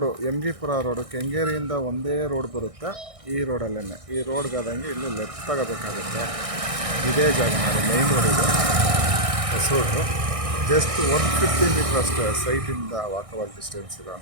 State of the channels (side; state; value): left; late; 1.6 ms